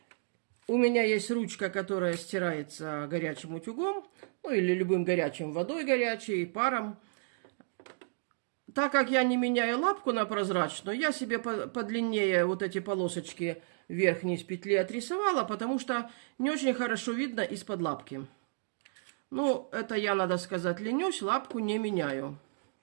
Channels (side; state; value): left; silent; digital silence